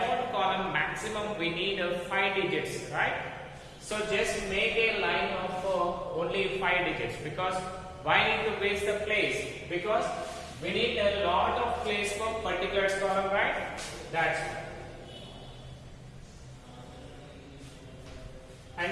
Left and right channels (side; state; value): both; identical; correlation 1.00